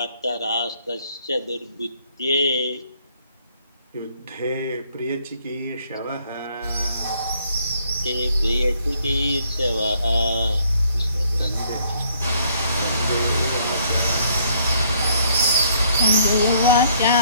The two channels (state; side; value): inverted; both; correlation -0.66